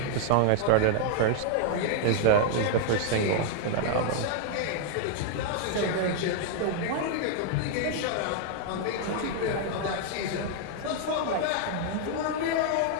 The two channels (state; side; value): different; both; correlation 0.00